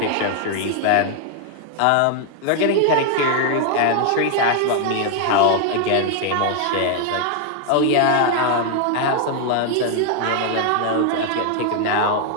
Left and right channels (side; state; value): both; different; correlation 0.00